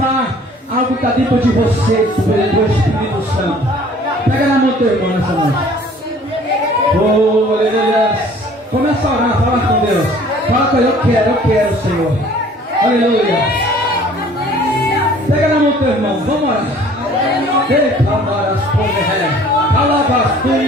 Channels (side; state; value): both; normal; correlation 0.52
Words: algo que está dentro de você, do Espírito Santo. Pega na mão do teu irmão nessa noite. Oh, aleluia. Começa a orar, fala com Deus. Fala com ele, eu quero, Senhor. Aleluia. Pega na mão do teu irmão, vamos orar.